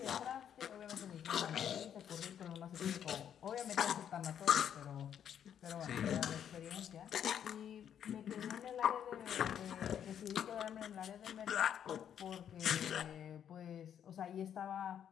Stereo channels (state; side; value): quieter; right; 9.2 dB